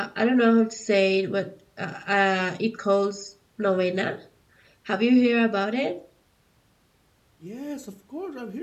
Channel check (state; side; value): identical; both; correlation 1.00